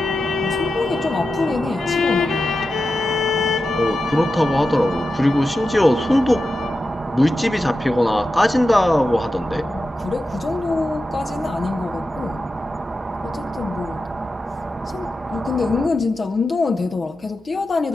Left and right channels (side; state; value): both; normal; correlation 0.91